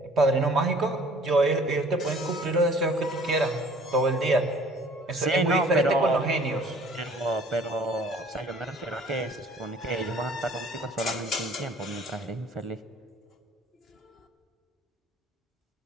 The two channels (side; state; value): both; normal; correlation 0.54